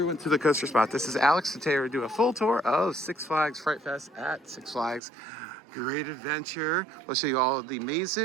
to the Coaster Spot. This is Alex. Today we're doing a full tour of Six Flags Fright Fest at Six Flags Great Adventure. We'll show you all of the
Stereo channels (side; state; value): left; drops out; at 5.0 s